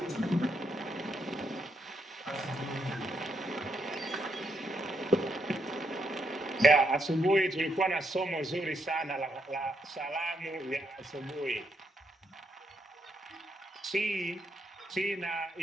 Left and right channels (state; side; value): normal; both; correlation 0.78